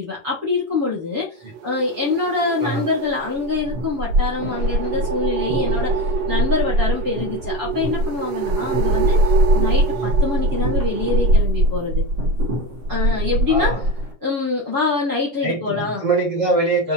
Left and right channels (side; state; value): left; late; 7.1 ms